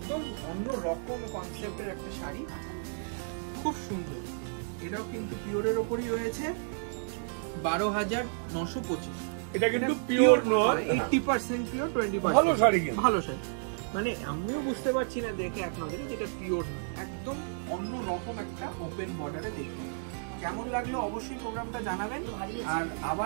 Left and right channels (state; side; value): silent; left; digital silence